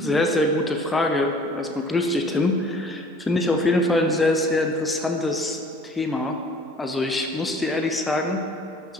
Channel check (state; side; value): normal; both; correlation 0.51